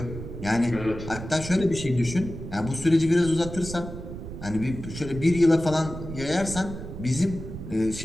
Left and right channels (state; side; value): noise; right; rumble, 10 dB below the sound